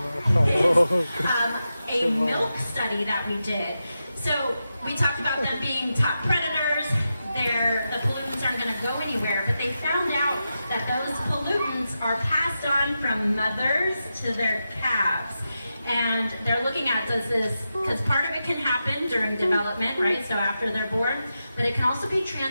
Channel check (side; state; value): both; inverted; correlation -0.89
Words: is a milk study that we did. So we talked about them being top predators. The pollutants aren't going to go anywhere, but they found out that those pollutants are passed on from mothers to their calves. And they're looking at, does this, because part of it can happen during development, right? So after they're born, but it can also be